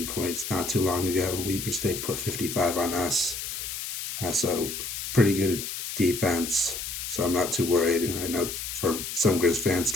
points not too long ago. Weber State put 55 on us. So pretty good defense. So I'm not too worried. I know for some Griz fans,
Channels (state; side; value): noise; left; hiss, 6 dB below the sound